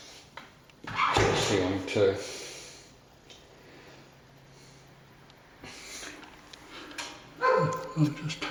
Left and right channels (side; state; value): both; identical; correlation 1.00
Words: to the ceiling too. I'll just